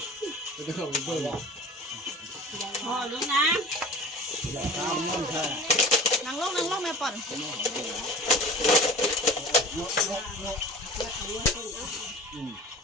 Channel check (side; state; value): both; normal; correlation 0.39